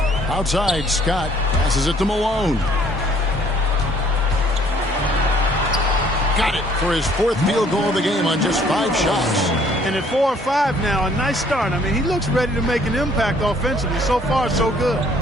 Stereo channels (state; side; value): normal; both; correlation 0.60